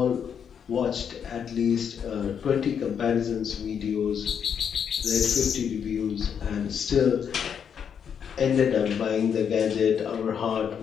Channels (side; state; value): right; quieter; 7.7 dB